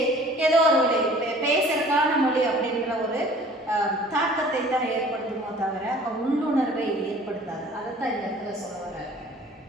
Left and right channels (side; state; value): both; normal; correlation 0.49